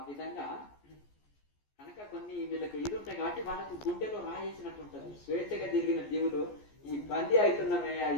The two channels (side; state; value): right; late; 14 ms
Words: విధంగా కనుక కొన్ని వీళ్ళకి ఇది ఉంటాయి కాబట్టి వాళ్ళకు గుండెలో రాయేసినట్టు ఉంటుంది. స్వేచ్ఛగా తిరిగిన జీవులు ఈ బందీ అవుతున్నామే,